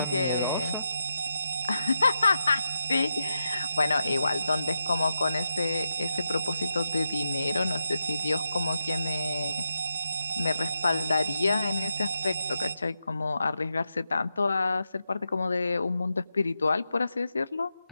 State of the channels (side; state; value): both; inverted; correlation -0.87